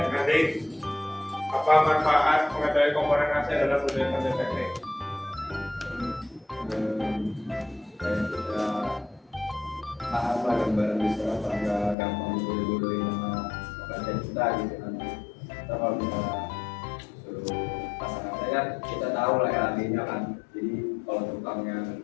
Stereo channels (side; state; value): right; drops out; at 12.0 s